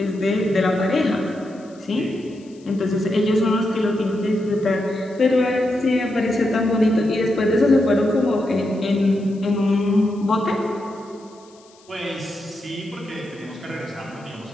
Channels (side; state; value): left; noise; hiss, 28 dB below the sound